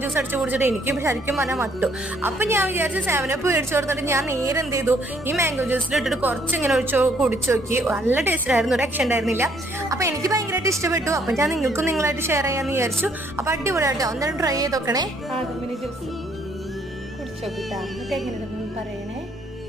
ജ്യൂസ് അടിച്ച് കുടിച്ചിട്ട് എനിക്ക് ശരിക്കും പറഞ്ഞാൽ മട്ടു. അപ്പൊ ഞാൻ വിചാരിച്ചു 7up മേടിച്ചു കൊടുത്തിട്ട് ഞാൻ നേരെ എന്ത് ചെയ്തു, ഈ മാംഗോ ജ്യൂസിൽ ഇട്ടിട്ട് കുറച്ച് ഇങ്ങനെ കുടിച്ചു നോക്കി. നല്ല ടേസ്റ്റ് ആയിരുന്നു, ഒരു രക്ഷ ഉണ്ടായിരുന്നില്ല. അപ്പൊ എനിക്ക് ഭയങ്കരമായിട്ട് ഇഷ്ടപ്പെട്ടു. അപ്പൊ ഞാൻ നിങ്ങൾക്കും നിങ്ങളായിട്ട് ഷെയർ ചെയ്യാന്ന് വിചാരിച്ചു. അപ്പൊ അടിപൊളിയായിട്ടോ, എന്തായാലും ട്രൈ ചെയ്ത് നോക്കണേ. ജ്യൂസ് കുടിച്ചു നോക്കിട്ടാ, എന്നിട്ട് എങ്ങനെയുണ്ടെന്ന് പറയണേ.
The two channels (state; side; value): normal; both; correlation 0.66